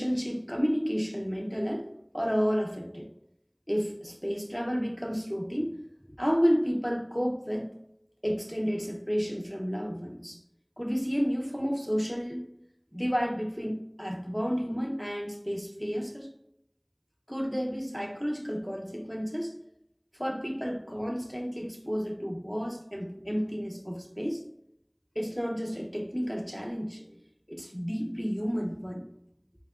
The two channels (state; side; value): identical; both; correlation 1.00